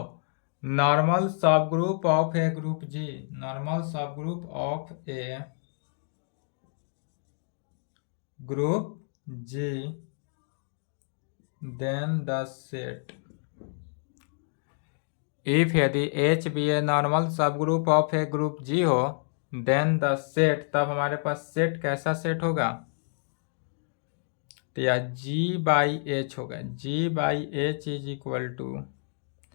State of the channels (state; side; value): silent; right; 59 dB below the other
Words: नॉर्मल सब group of a group G, normal सब group of a group G, then the set if यदि एच बी ए नॉर्मल सब group of a group G हो, देन द सेट, तब हमारे पास सेट कैसा सेट होगा, तो यह जी बाई एच होगा। G by H is equal to